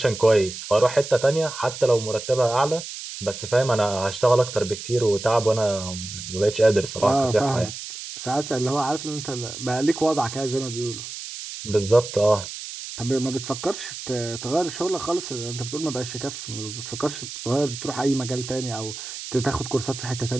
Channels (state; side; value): noise; right; hiss, 10 dB below the sound